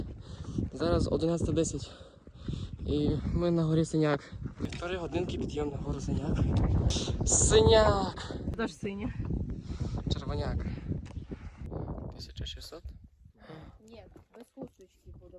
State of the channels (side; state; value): both; identical; correlation 1.00